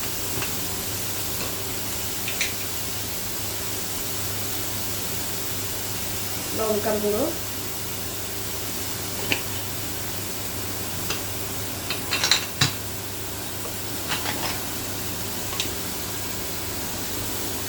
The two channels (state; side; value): identical; both; correlation 1.00